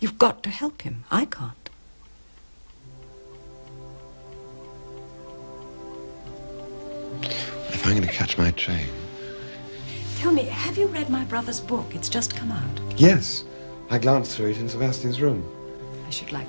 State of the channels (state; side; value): inverted; both; correlation -1.00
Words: got to help him. I can't. If I'm going to catch my train... Tell me, have you read my brother's book? It's just come out. Yes. I glanced through it in Sebastian's room. I should